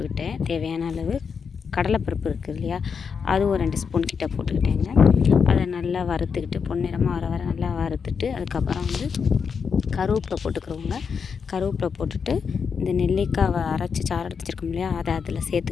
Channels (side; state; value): right; quieter; 6.1 dB